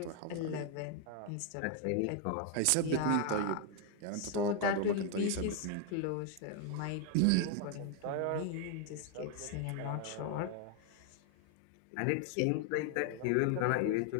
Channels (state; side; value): different; both; correlation 0.01